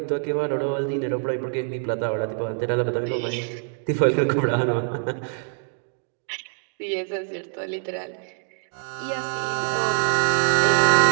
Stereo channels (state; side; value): silent; left; digital silence